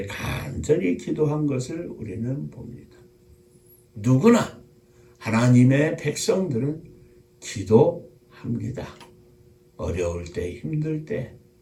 간절히 기도한 것을 우리는 봅니다. 누구나 하나님의 백성들은 기도합니다. 어려울 때, 힘들 때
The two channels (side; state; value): both; identical; correlation 1.00